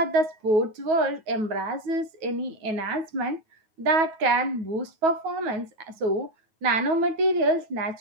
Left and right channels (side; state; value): left; late; 9.3 ms